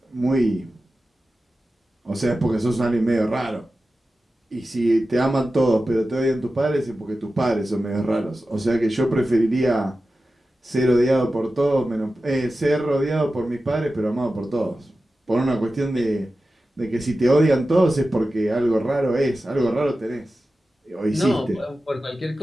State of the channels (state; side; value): normal; both; correlation 0.94